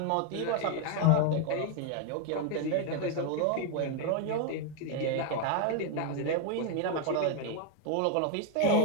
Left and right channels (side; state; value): both; different; correlation 0.01